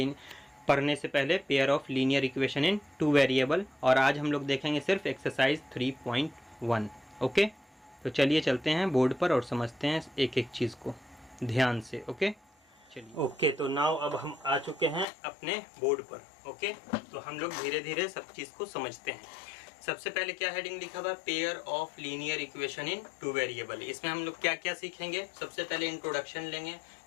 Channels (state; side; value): drops out; right; at 15.1 s